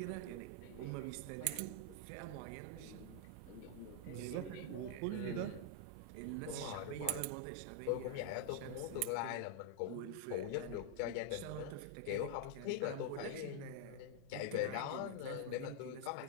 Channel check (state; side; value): different; both; correlation 0.00